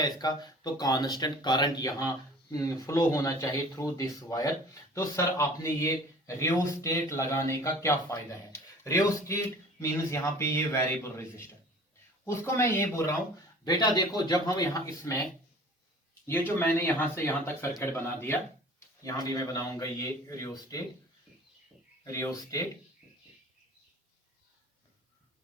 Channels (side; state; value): both; normal; correlation 0.46